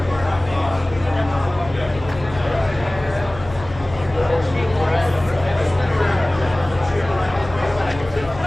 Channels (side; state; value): left; noise; hum, 15 dB below the sound